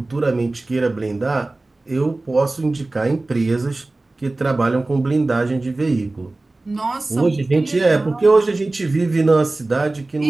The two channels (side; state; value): left; quieter; 3.0 dB